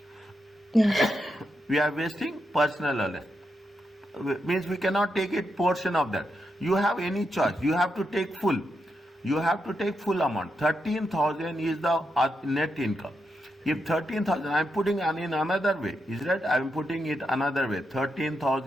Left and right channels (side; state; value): both; normal; correlation 0.84